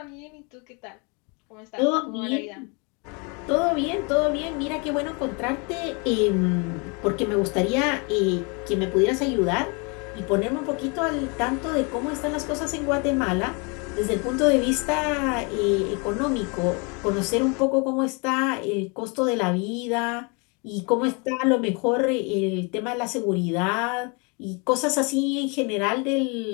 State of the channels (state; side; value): quieter; right; 32.2 dB